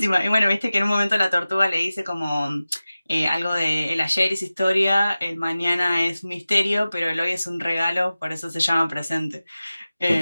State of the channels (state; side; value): inverted; both; correlation -0.96